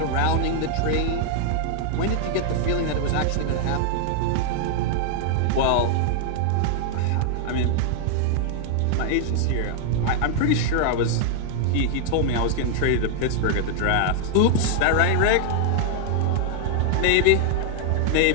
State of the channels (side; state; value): both; different; correlation 0.00